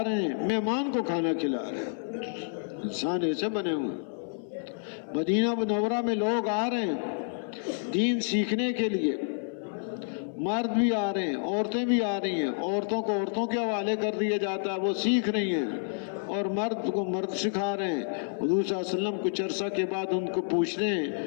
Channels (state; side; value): silent; right; 56 dB below the other